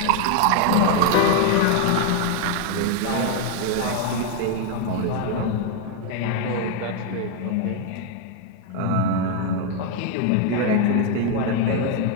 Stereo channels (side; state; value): both; different; correlation 0.01